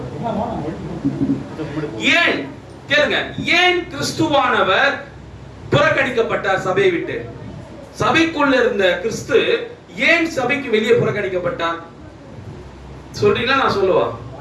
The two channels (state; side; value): identical; both; correlation 1.00